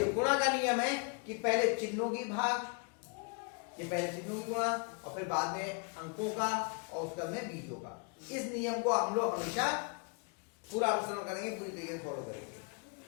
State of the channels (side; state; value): right; quieter; 35.7 dB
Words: गुणा का नियम है कि पहले चिन्हों की भाग, ये पहले चिन्हों की गुणा और फिर बाद में अंकों का और उसके में बीजों का। इस नियम को हम लोग हमेशा पूरा अनुसरण करेंगे, पूरी तरीके से फॉलो करेंगे।